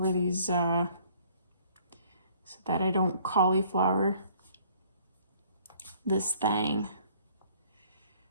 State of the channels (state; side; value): inverted; both; correlation -0.59